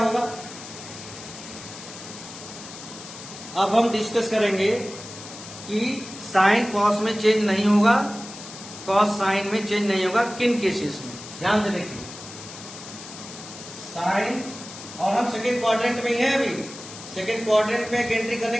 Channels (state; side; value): noise; left; hiss, 14 dB below the sound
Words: अब हम डिस्कस करेंगे कि साइन कॉस में चेंज नहीं होगा, कॉस साइन में चेंज नहीं होगा, किन केसेस में। ध्यान से देखिए, साइन, और हम सेकेंड क्वाड्रेंट में ही है अभी। सेकेंड क्वाड्रेंट में एंट्री करने